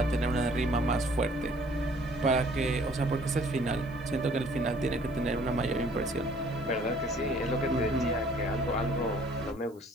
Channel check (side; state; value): right; noise; hiss, 30 dB below the sound